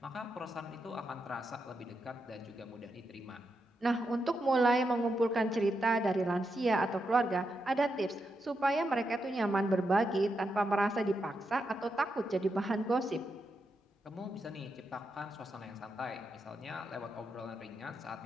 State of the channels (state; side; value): normal; both; correlation 0.84